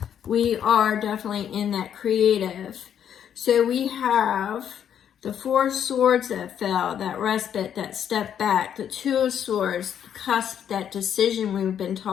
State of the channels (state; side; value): quieter; right; 9.1 dB